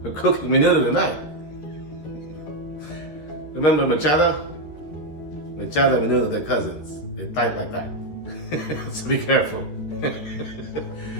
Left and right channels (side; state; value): right; late; 13 ms